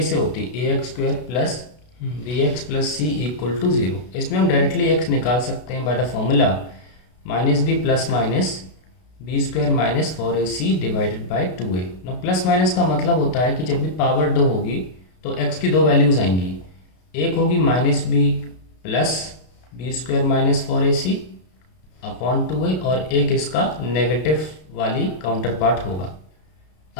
से होती है, a x square plus b x plus c equal to 0। इसमें हम डायरेक्टली एक्स निकाल सकते हैं by the formula minus b plus minus b square minus 4ac divided by 2a। ना प्लस माइनस का मतलब होता है कि जब भी पावर 2 होगी तो x की दो वैल्यूज़ आएंगी। एक होगी minus b plus b square minus 4ac upon 2a, और एक इसका नेगेटिव वाली काउंटर पार्ट होगा।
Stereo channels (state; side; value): late; right; 32 ms